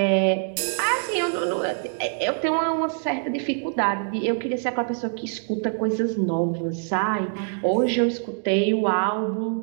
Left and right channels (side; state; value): left; silent; digital silence